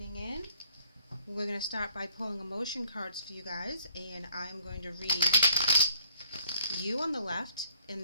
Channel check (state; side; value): inverted; both; correlation -0.60